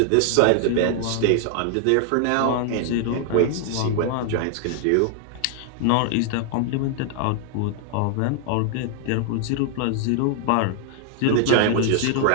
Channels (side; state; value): both; different; correlation 0.00